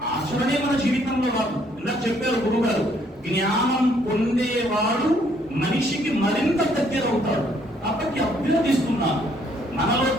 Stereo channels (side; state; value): both; normal; correlation 0.66